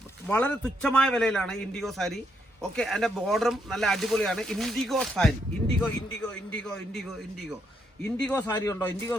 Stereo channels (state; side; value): normal; both; correlation 0.76